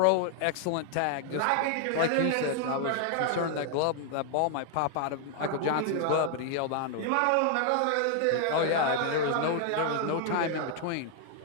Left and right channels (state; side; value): different; both; correlation 0.00